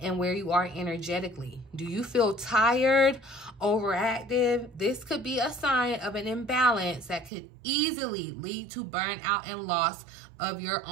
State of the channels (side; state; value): left; drops out; at 7.3 s